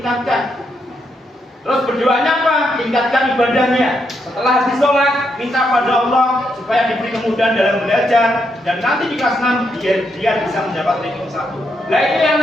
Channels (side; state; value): both; normal; correlation 0.79